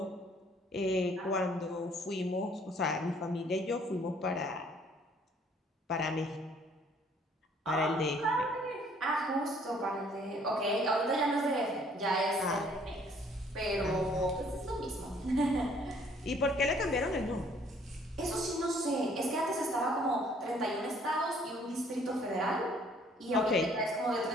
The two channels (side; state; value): both; normal; correlation 0.60